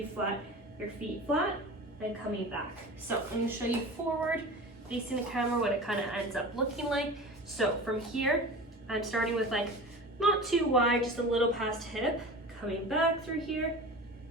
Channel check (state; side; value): normal; both; correlation 0.34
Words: flat, your feet flat, and coming back. So I'm gonna show you forward, facing the camera, what it kind of ends up looking like. So from here, I'm starting with like, not too wide, just a little past hip, coming back through here,